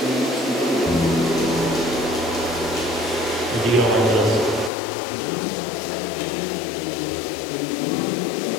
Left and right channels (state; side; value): drops out; right; at 4.7 s